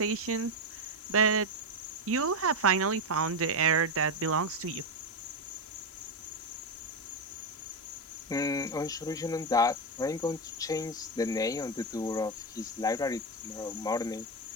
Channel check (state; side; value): normal; both; correlation 0.09